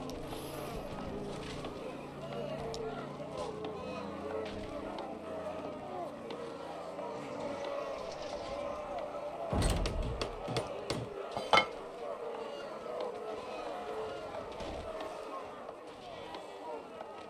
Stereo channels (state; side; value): identical; both; correlation 1.00